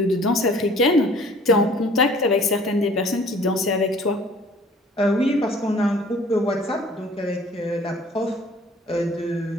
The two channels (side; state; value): both; normal; correlation 0.52